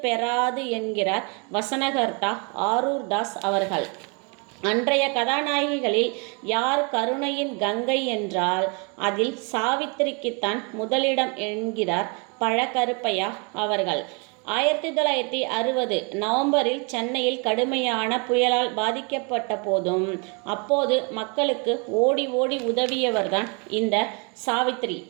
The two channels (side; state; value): left; quieter; 34.0 dB